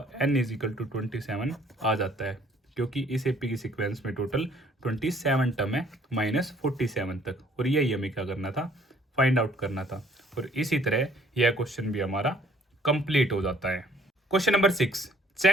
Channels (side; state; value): both; normal; correlation 0.60